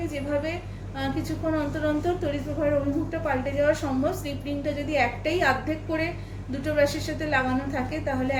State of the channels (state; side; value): identical; both; correlation 1.00